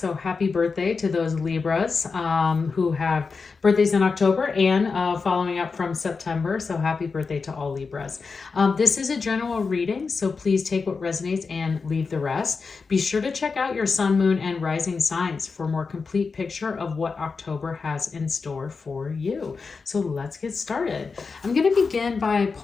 happy birthday to those Libras who have birthdays in October and following up from September. So happy birthday to all Libras. This is a general reading, so please take what resonates and leave the rest. Be sure to check out your sun, moon, and rising signs for a more complete picture of what October has in store for you. So let's get started. I'm going to begin by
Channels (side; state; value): right; quieter; 4.8 dB